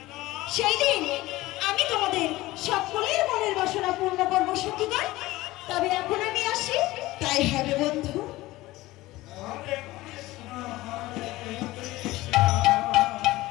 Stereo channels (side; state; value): right; quieter; 18.3 dB